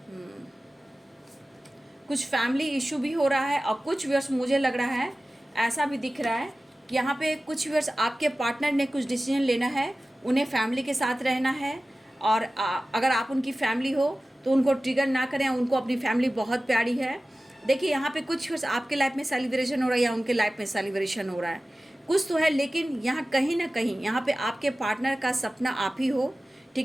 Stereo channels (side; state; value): both; normal; correlation 0.96